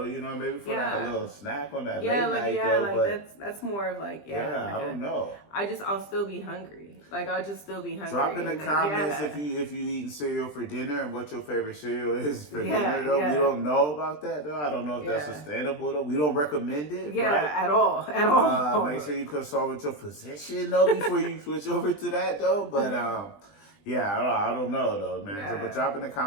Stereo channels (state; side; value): late; right; 20 ms